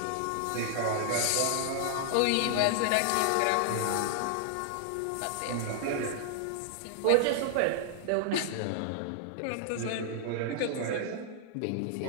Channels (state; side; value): different; both; correlation 0.00